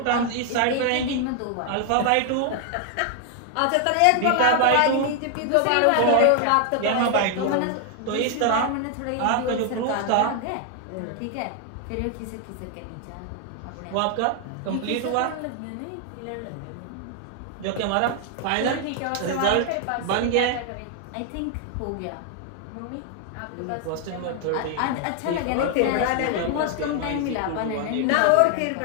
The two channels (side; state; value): both; different; correlation 0.00